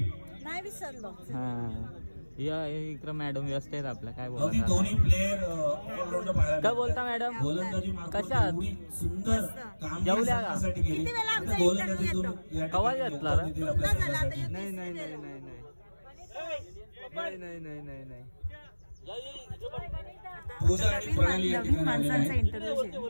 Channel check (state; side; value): inverted; both; correlation -1.00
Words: नाही विसरलो हा या इकडं मॅडम व्यस्त आहेत आपल्या काय अगदी बोलता दोन्ही प्लेयर ऑलराऊंडर पाहायला काय बोलता मॅडम गोलंदाजी मार्फत कशा आहात? एवढी सुंदर काम जेवल्या का? किती वेळा आमचा गोलंदाजीतून interview या कवा ठिकाणी घेतला रे? दिला आपल्या झाला आता संघासाठी. नाही नाही नाही नाही नाही नाही नाही नाही नाही नाही पूजा आणि प्रणाली या ठिकाणी आलेल्या